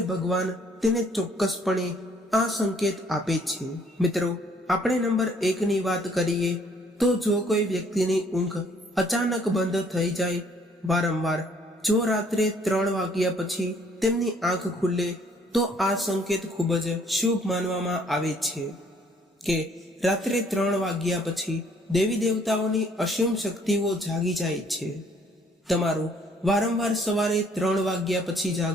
ભગવાન તેને ચોક્કસપણે આ સંકેત આપે છે. મિત્રો, આપણે નંબર 1 ની વાત કરીએ તો જો કોઈ વ્યક્તિની ઊંઘ અચાનક બંધ થઈ જાય, વારંવાર જો રાત્રે 3 વાગ્યા પછી તેમની આંખ ખુલે તો આ સંકેત ખૂબ જ શુભ માનવામાં આવે છે કે રાત્રે 3 વાગ્યા પછી દેવી દેવતાઓની અસીમ શક્તિઓ જાગી જાય છે. તમારું વારંવાર સવારે 3 વાગ્યા પછી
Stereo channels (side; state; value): both; normal; correlation 0.62